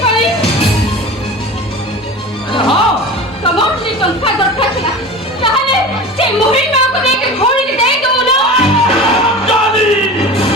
करी हां तमोर से टंका दरकार छला ताहले से मोहिन मां को देके घोड़ी दे दो ना जानी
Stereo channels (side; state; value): both; normal; correlation 0.34